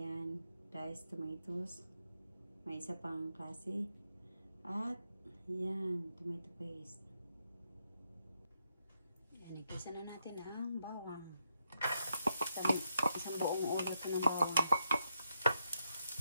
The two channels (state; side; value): inverted; both; correlation -0.81